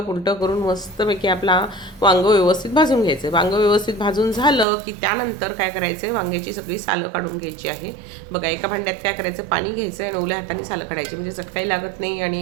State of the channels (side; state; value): left; drops out; at 4.7 s